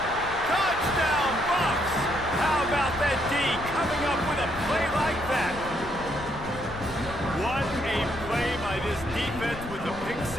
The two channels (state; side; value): noise; left; rumble, 12 dB below the sound